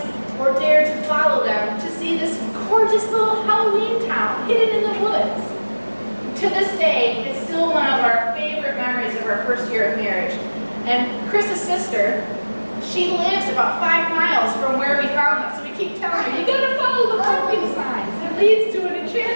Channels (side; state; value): both; inverted; correlation -1.00